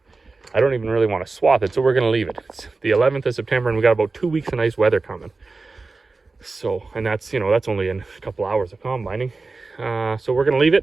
I don't even really want to swath it, so we're going to leave it. It's the 11th of September, and we got about 2 weeks of nice weather coming. So, and that's, that's only in a couple hours of combining. So we're going to leave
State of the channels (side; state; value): left; quieter; 3.8 dB